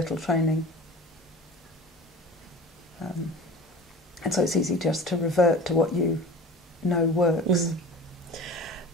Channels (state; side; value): normal; both; correlation 0.38